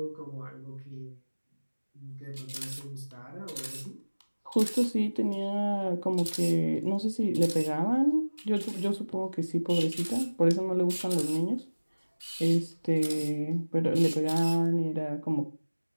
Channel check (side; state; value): both; inverted; correlation -1.00